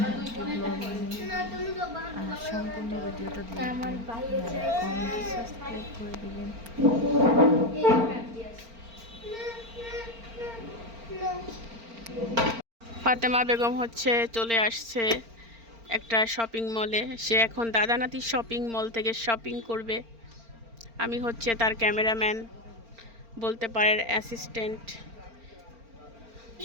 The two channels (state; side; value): late; left; 4.4 ms